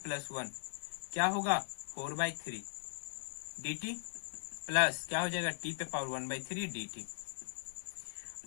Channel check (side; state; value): right; silent; digital silence